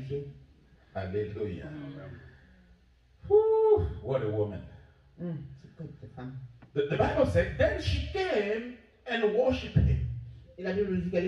Hallelujah. Whew, what a woman. C'est quoi cette femme? The Bible said, then she came and worshipped him. Et la Bible nous dit qu'elle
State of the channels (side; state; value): both; identical; correlation 1.00